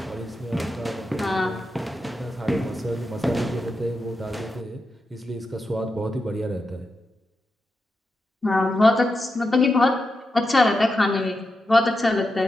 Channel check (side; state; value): both; normal; correlation 0.88